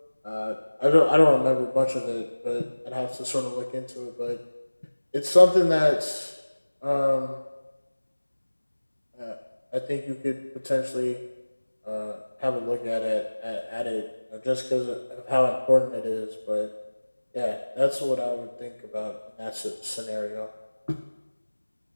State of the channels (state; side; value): inverted; both; correlation -1.00